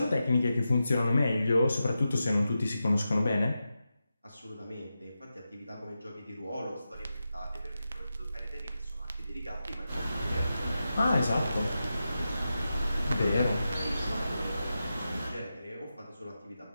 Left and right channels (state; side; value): inverted; both; correlation -0.90